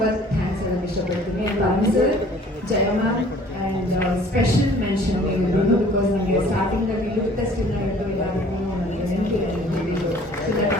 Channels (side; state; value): both; normal; correlation 0.52